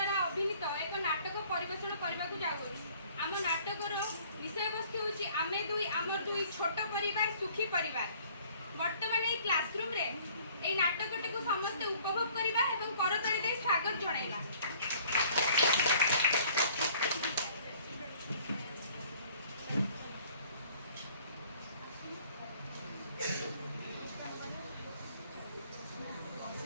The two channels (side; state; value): both; inverted; correlation -0.56